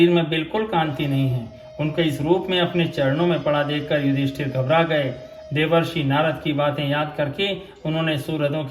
में बिल्कुल कांति नहीं है। उनके इस रूप में अपने चरणों में पड़ा देखकर युधिष्ठिर घबरा गए। देवर्षि नारद की बातें याद करके उन्होंने सुहृदों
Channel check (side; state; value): both; identical; correlation 1.00